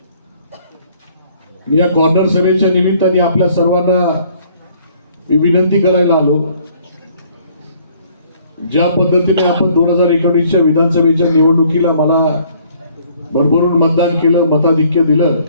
या कॉर्नर सभेच्या निमित्ताने आपल्या सर्वांना मी विनंती करायला आलो, ज्या पद्धतीने आपण 2019च्या विधानसभेच्या निवडणुकीला मला भरभरून मतदान केलं, मताधिक्य दिलं,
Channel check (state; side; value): inverted; both; correlation -0.61